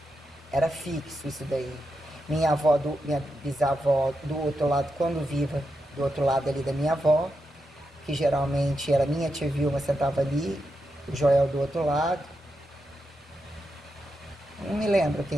era fixo isso daí. Minha bisavó do outro lado, quando viva, do outro lado ali da minha avó, que geralmente era minha tia Vilma, sentava ali, o Joel do outro lado. Não me lembro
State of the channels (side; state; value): both; normal; correlation 0.86